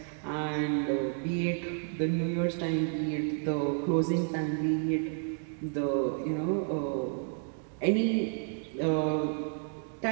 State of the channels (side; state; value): left; silent; 57 dB below the other